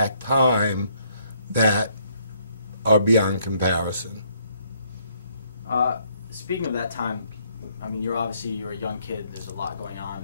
time that are beyond comparison. Speaking of that time, I mean, you're a young kid, there's a lot going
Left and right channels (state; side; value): inverted; both; correlation -0.69